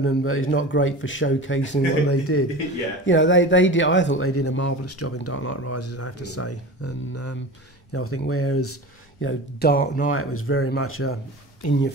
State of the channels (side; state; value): both; normal; correlation 0.32